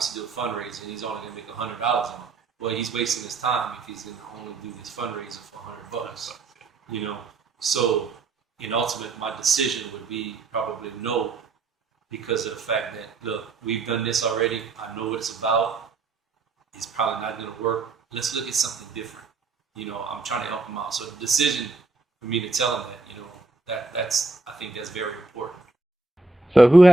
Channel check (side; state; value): left; quieter; 3.6 dB